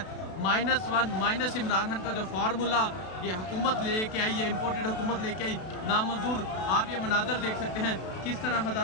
-1 माइनस इमरान खान का जो फार्मूला ये हुकूमत लेके आई है, इम्पोर्टेड हुकूमत लेके आई, नामंजूर। आप ये मनाज़र देख सकते हैं किस तरह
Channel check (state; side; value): late; right; 32 ms